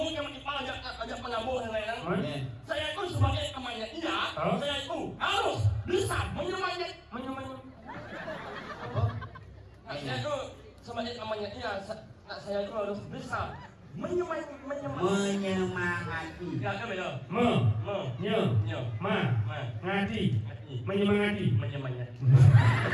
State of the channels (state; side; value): identical; both; correlation 1.00